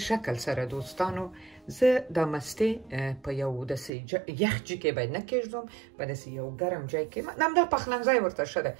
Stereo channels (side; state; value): left; drops out; at 3.9 s